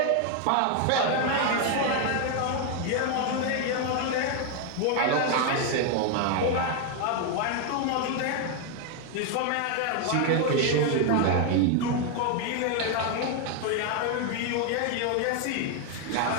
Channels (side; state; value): both; different; correlation 0.01